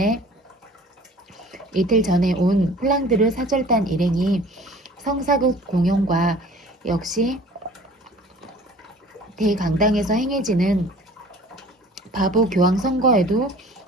온 플랑드르 사절단 일행이 성사극 공연과 역시 대강당에서 행해지는 바보 교황 선거에도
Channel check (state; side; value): normal; both; correlation 0.47